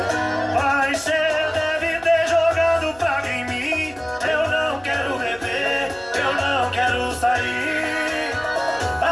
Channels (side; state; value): left; noise; hum, 25 dB below the sound